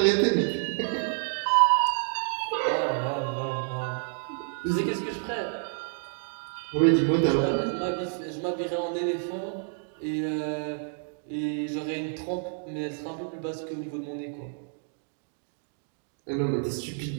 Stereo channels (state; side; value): silent; left; 59 dB below the other